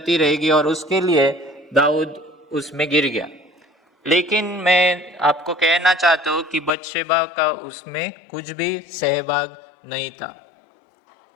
रहेगी और उसके लिए दाऊद उसमें गिर गया। लेकिन मैं आपको कहना चाहता हूँ कि बत्शेबा का उसमें कुछ भी सहभाग नहीं था।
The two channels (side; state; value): right; drops out; at 6.7 s